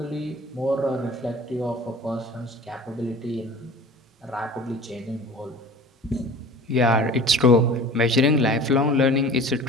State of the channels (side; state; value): both; normal; correlation 0.42